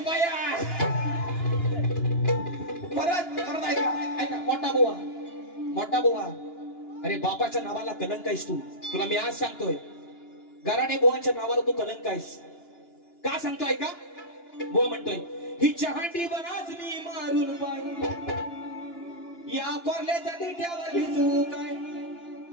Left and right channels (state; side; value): late; right; 2.9 ms